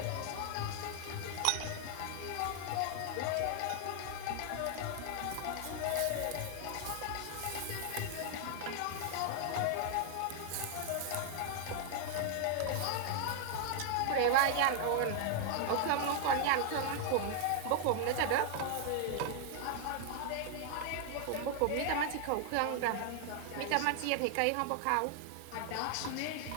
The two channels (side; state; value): both; different; correlation 0.00